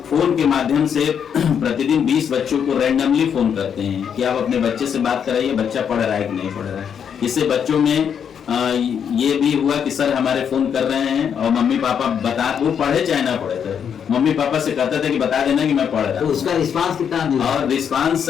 फोन के माध्यम से प्रतिदिन 20 बच्चों को रैंडमली फोन करते हैं कि आप अपने बच्चे से बात कराइए, बच्चा पढ़ रहा है कि नहीं पढ़ रहा है। इससे बच्चों में ये भी हुआ कि सर हमारे फोन कर रहे हैं और मम्मी पापा बता, वो पढ़े चाहे ना पढ़े थे, मम्मी पापा से कहते थे कि बता देना कि मैं पढ़ रहा हूं। तो उसका रिस्पांस कितना दिया? और रिस्पांस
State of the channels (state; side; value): quieter; right; 7.8 dB